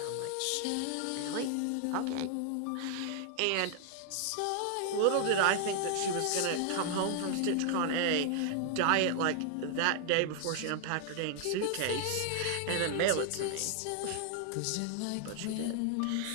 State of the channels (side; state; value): both; different; correlation 0.00